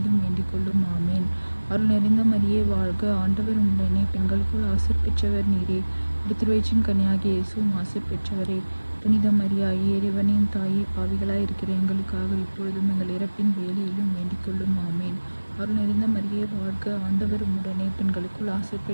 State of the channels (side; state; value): both; inverted; correlation -1.00